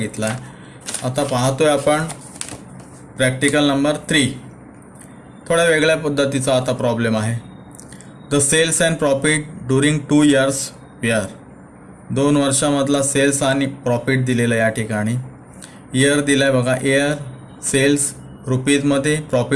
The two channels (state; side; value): identical; both; correlation 1.00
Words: आहे. आता पाहतोय आपण प्रॅक्टिकल नंबर 3. थोड्या वेगळ्या पद्धतीचा आता प्रॉब्लेम आहे. The sales and profit during 2 years were. 2 वर्षामधला सेल्स आणि प्रॉफिट दिलेला या ठिकाणी. इयर दिला आहे बघा. इयर सेल्स रुपीजमध्ये,